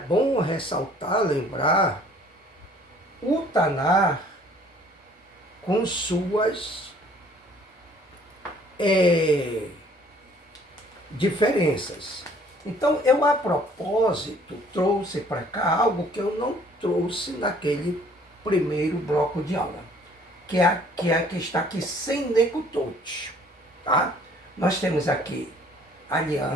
ressaltar, lembrar, o Tanar com suas diferenças. Então eu, a propósito, trouxe para cá algo que eu não trouxe naquele primeiro bloco de aula, que é a que está aqui sem necutote, tá? Nós temos aqui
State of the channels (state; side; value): normal; both; correlation 0.57